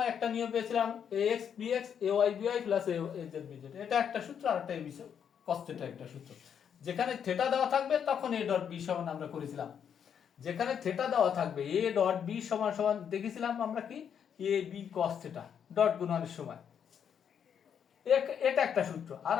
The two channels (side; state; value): right; quieter; 8.0 dB